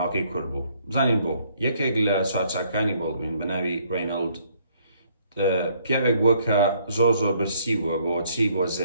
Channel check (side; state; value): both; inverted; correlation -0.66